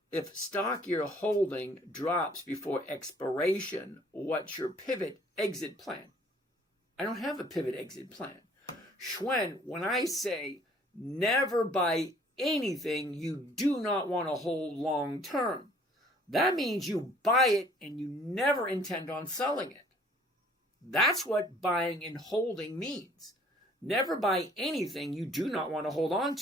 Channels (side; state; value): both; normal; correlation 0.57